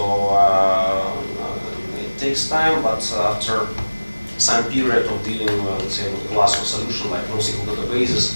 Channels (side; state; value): both; inverted; correlation -1.00